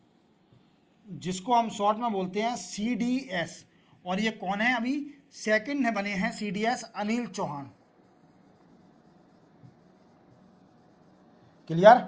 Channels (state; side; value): identical; both; correlation 1.00